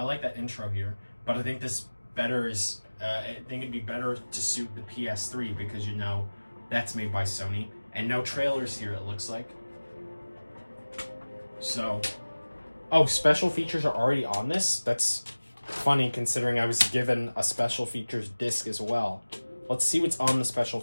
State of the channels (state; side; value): inverted; both; correlation -1.00